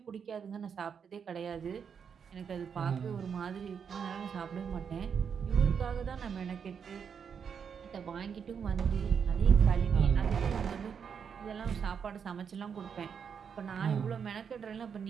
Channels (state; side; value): quieter; left; 6.9 dB